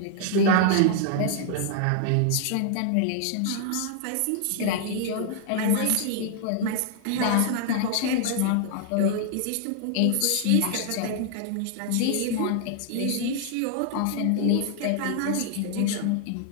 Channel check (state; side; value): different; both; correlation 0.00